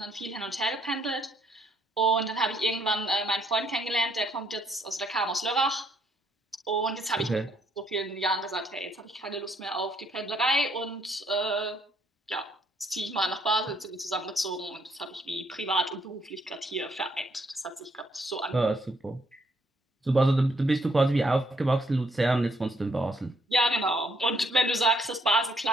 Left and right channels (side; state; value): both; normal; correlation 0.70